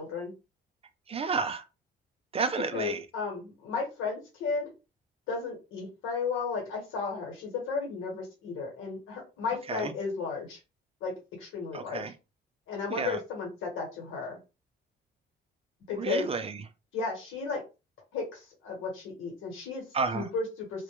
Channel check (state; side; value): normal; both; correlation 0.20